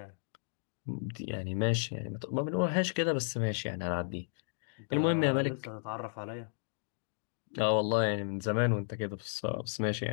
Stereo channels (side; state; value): right; silent; digital silence